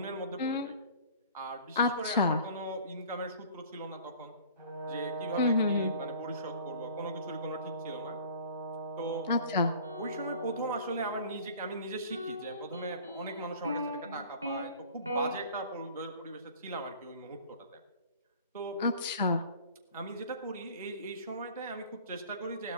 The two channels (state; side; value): inverted; both; correlation -0.46